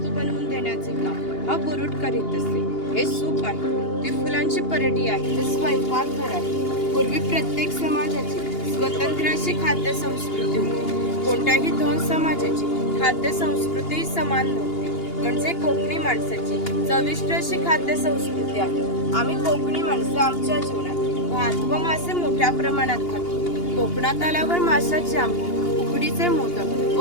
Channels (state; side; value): late; right; 2.8 ms